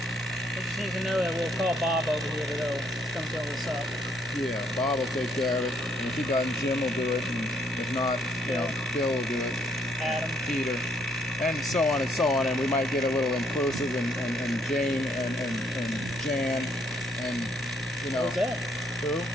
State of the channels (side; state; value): left; noise; hum, 21 dB below the sound